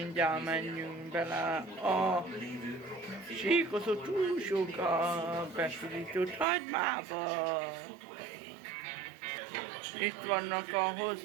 menjünk bele a síkozott húsok a bepirított hagymába. Itt vannak a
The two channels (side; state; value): left; drops out; at 6.5 s